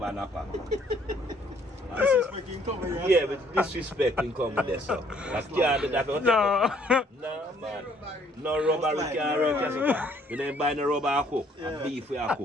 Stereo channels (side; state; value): both; normal; correlation 0.63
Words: in the pack. Disrespecting cover, yeah. Yeah, but disrespecting come with this, so. That's can't do that. No. No, man. No rubber we can't rent as a pack. You don't buy no rubber I cook. And beef we I